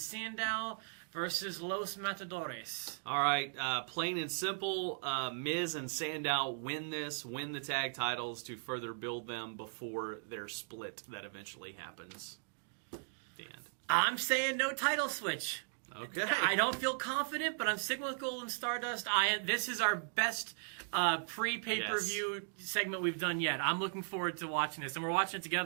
versus Los Matadores. All right, plain and simple, Miz and Sandow win the tag titles to further build them before their split that eventually happens. The end. I'm saying no title switch. Okay. I don't feel confident, but I'm sticking with Gold and Stardust. This is our best pre-pay-per-view segment we've done yet. I'm looking forward to watching this, and we're watching it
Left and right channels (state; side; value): silent; left; digital silence